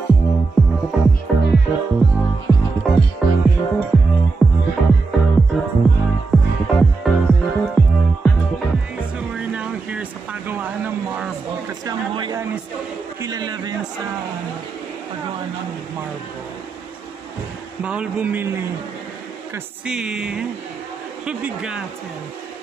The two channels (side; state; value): left; quieter; 4.0 dB